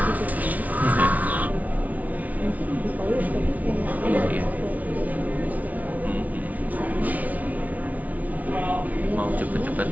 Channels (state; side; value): late; left; 0.072 ms